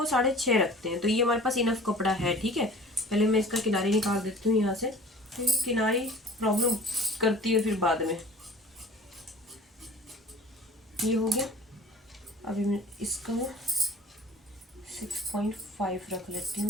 6.5 रखते हैं। तो ये हमारे पास इनफ कपड़ा है। ठीक है, पहले मैं इसका किनारी निकाल देती हूँ यहाँ से, क्योंकि किनारी प्रॉब्लम करती है फिर बाद में। ये हो गया। अभी मैं इसका 6.5 रख लेती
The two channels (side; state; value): both; normal; correlation 0.45